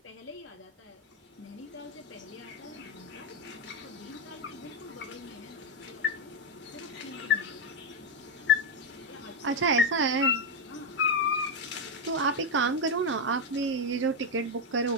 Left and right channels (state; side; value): normal; both; correlation 0.05